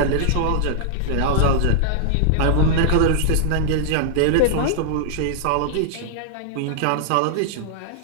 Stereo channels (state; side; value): different; both; correlation -0.01